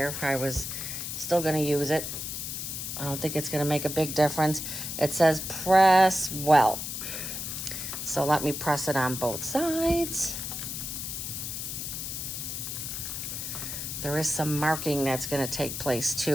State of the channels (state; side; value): noise; left; hiss, 5 dB below the sound